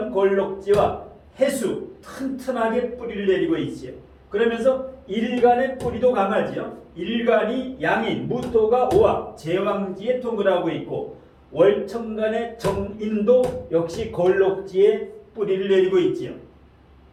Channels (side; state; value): both; identical; correlation 1.00